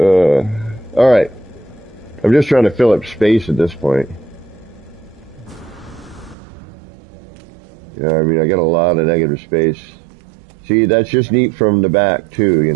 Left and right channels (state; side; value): drops out; left; at 6.4 s